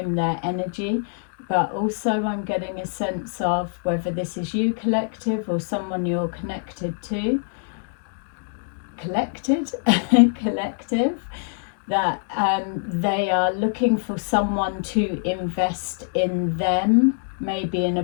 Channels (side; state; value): right; silent; digital silence